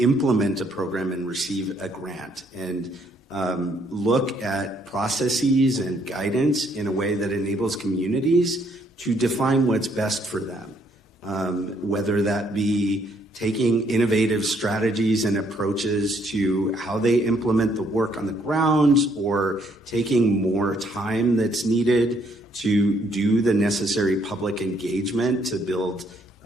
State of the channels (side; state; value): both; normal; correlation 0.69